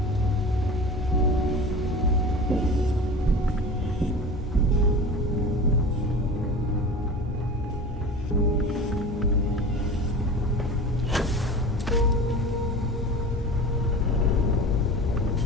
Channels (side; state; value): both; normal; correlation 0.35